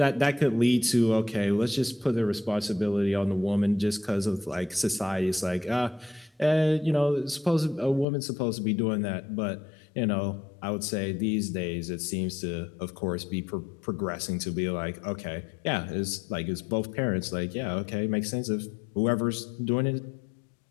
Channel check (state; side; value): drops out; right; at 8.1 s